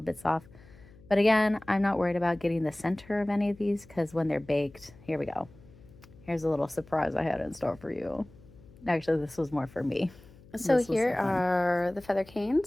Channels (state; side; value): noise; left; hum, 23 dB below the sound